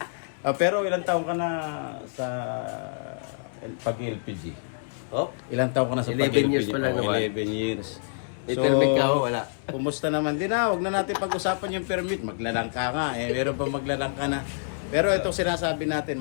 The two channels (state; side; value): silent; right; digital silence